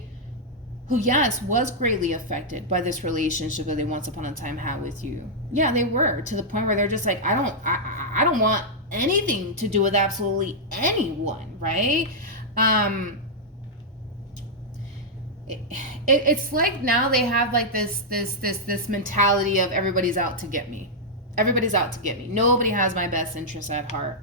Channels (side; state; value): both; normal; correlation -0.06